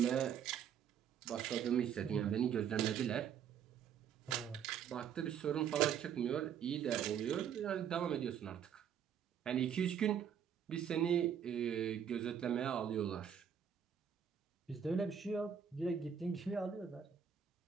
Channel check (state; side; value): quieter; left; 8.3 dB